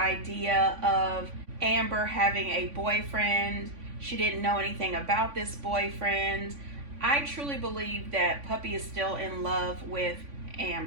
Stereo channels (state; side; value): late; left; 3.5 ms